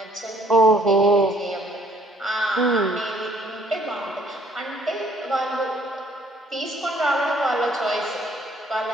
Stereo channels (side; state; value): both; normal; correlation 0.62